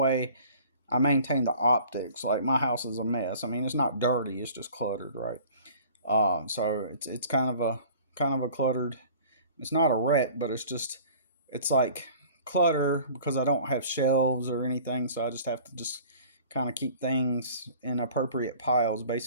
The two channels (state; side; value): inverted; both; correlation -0.48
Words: I maintain the optics. Like my house is a mess. I mean, it's not dirty; it's just cluttered, right? So it's kind of a cluttered. It's not a wreck, but it's like clutter because I don't have shelves or anything. So I just have to just kind of keep things in appropriate piles,